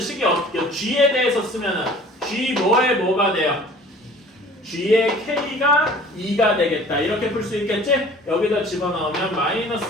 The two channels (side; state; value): both; normal; correlation 0.48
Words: 어떻게 g에 대해서 쓰면은 g 뭐에 뭐가 돼요? g의 k가 2가 되겠다. 이렇게 풀 수 있겠지? 여기다 집어넣으면 마이너스